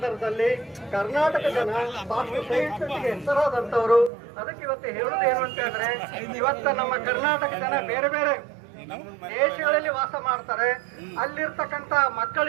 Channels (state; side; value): drops out; left; at 4.1 s